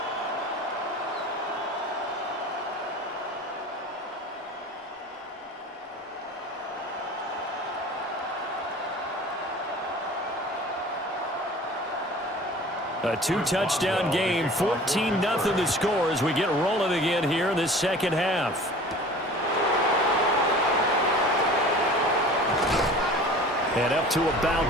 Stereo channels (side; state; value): both; normal; correlation 0.42